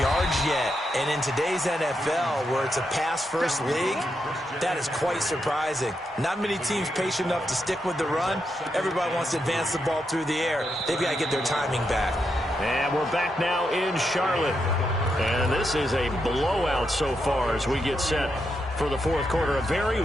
yards yet. And in today's NFL, where it's a pass-first league, that is quite surprising. Not many teams patient enough to stick with the run. Everybody wants to advance the ball through the air. They've got to get their timing back. And we're back now in Charlotte. And this is a blowout so far as we get set for the 4th quarter. A very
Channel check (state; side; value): normal; both; correlation 0.83